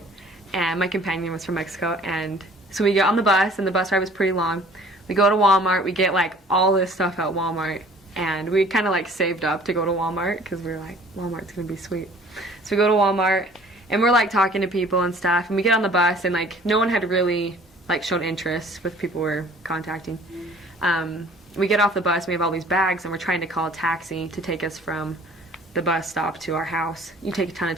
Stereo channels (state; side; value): normal; both; correlation 0.51